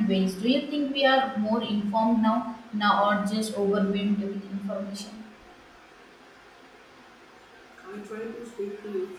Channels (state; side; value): identical; both; correlation 1.00